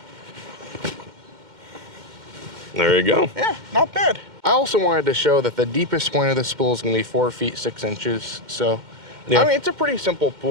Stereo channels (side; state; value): left; late; 2.1 ms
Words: There you go. Yeah, not bad. I also wanted to show that the deepest point of this pool is going to be 4 feet 6 inches. So, I mean, it's a pretty simple